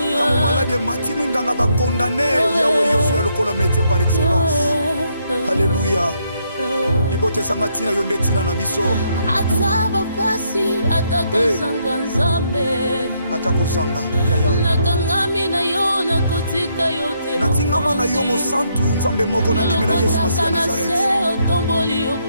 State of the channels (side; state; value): both; inverted; correlation -0.74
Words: ntango maladi emati minganga bakondane yawe yozwa lokola métier par excellence alléluia libote ezanga ntina yo nde ntina na biso ata bapasi atakozanga nzambe atakozanga yaya nakangami na yo nakotika yo te natingama na yo mosantu nzambe moko nandimela Yesu Masiya Nazareth otomboli